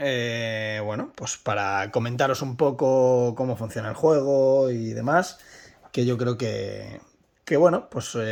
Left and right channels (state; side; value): identical; both; correlation 1.00